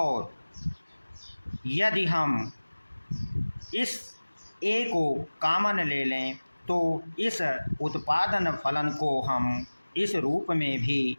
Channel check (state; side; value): inverted; both; correlation -1.00